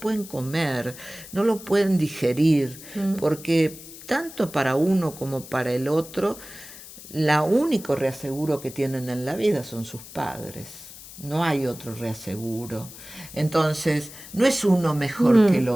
comer, no lo pueden digerir, porque tanto para uno como para el otro, la único reaseguro que tienen en la vida son sus padres. No hay otro reaseguro. Entonces, no es uno mejor que el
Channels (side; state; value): left; noise; hiss, 16 dB below the sound